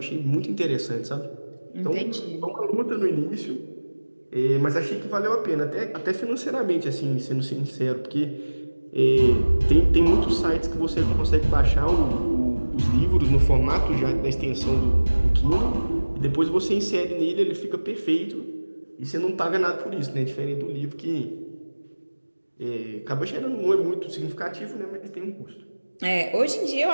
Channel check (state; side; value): inverted; both; correlation -1.00